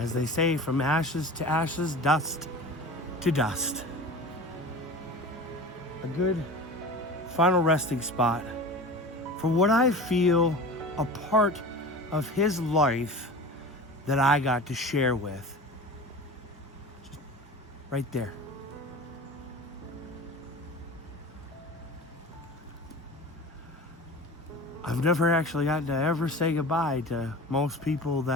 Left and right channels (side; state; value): both; normal; correlation 0.35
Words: they say, from ashes to ashes, dust to dust. A good final resting spot for what I feel a part of his life that I got to share with. Just right there. I've never actually gotten to ever say goodbye to most people